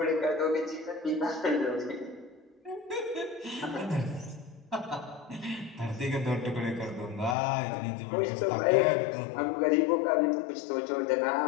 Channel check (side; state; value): right; drops out; at 7.4 s